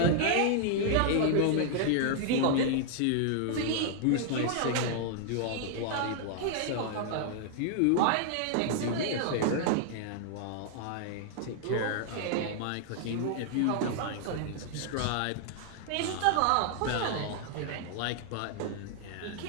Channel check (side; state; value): both; different; correlation -0.01